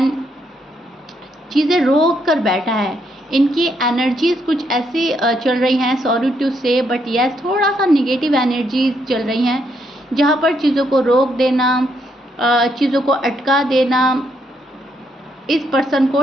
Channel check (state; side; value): normal; both; correlation 0.75